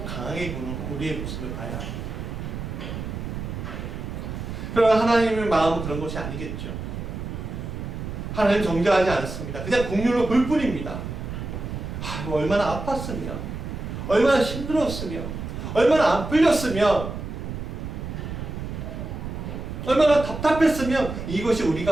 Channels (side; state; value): right; noise; rumble, 6 dB below the sound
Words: 강하게 보는 우리의 모습을 봐야 합니다. 그러나 하나님의 마음은 그런 것이 아니겠죠. 하나님 정죄하지 않습니다. 그냥 긍휼로 볼 뿐입니다. 얼마나 아팠으면, 얼마나 힘들었으면, 얼마나 안 풀렸으면, 얼마나 답답했으면 이것이